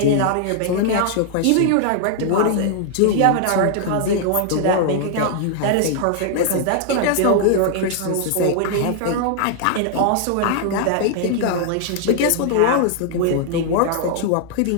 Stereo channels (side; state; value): both; different; correlation 0.00